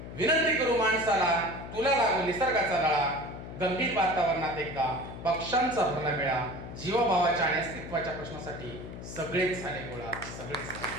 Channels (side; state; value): left; noise; hum, 11 dB below the sound